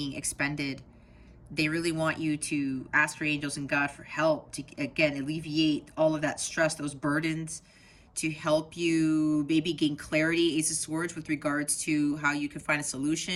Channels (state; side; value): identical; both; correlation 1.00